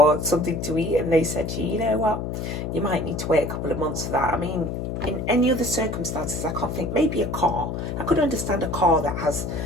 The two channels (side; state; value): left; noise; hum, 4 dB below the sound